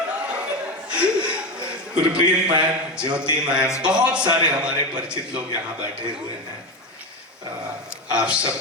गुरप्रीत मैम, ज्योति मैम, बहुत सारे हमारे परिचित लोग यहाँ बैठे हुए हैं। आप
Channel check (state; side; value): normal; both; correlation 0.18